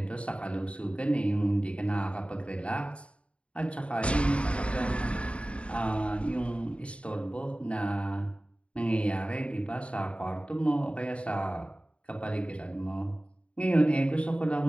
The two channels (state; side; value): late; right; 0.060 ms